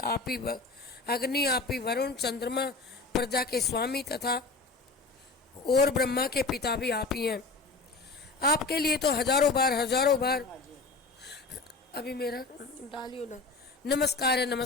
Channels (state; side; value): quieter; right; 3.8 dB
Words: आप ही अग्नि, आप ही वरुण, चंद्रमा, प्रजा के स्वामी तथा और ब्रह्मा के पिता भी आप ही हैं। आपके लिए तो हजारों बार अभी मेरा डालियो ना नमस्कार है,